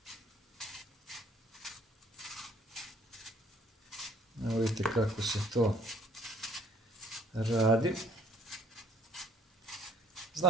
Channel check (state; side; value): normal; both; correlation 0.60